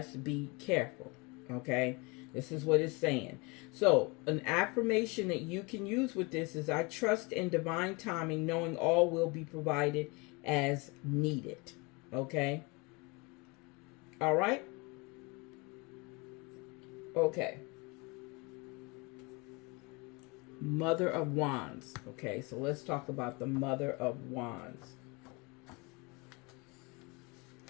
be careful. Okay? This is what it's saying. So an affirmation that you can use with this is, I trust in divine timing, knowing all will be provided as needed. Okay? All right? Okay. Mother of Wands. Okay, so let's talk about the Mother of Wands.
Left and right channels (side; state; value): right; quieter; 28.1 dB